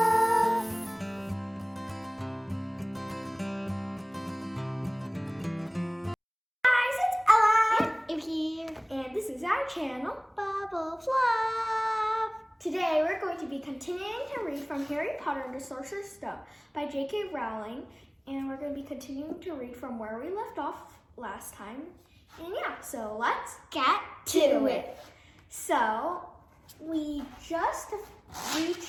Guys, it's Ella. And here. And this is our channel, Bubble of Love. Today we're going to be continuing to read from Harry Potter and the Sorcerer's Stone by J.K. Rowling. And we're going to be continuing to read from where we left off last time. And yeah, so let's get to it. So, we just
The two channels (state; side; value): identical; both; correlation 1.00